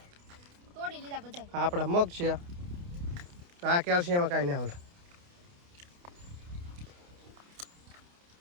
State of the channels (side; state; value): left; late; 29 ms